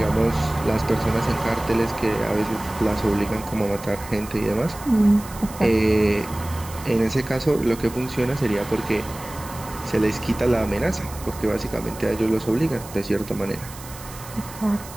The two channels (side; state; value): right; noise; hiss, 16 dB below the sound